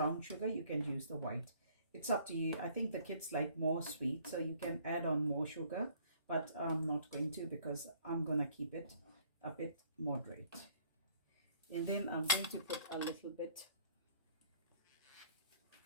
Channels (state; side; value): inverted; both; correlation -0.60